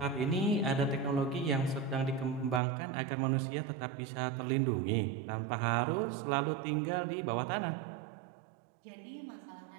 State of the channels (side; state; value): left; drops out; at 2.6 s